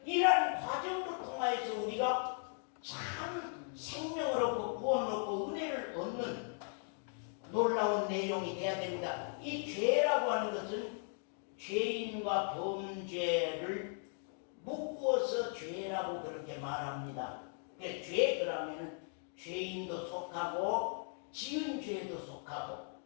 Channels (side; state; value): right; silent; 53 dB below the other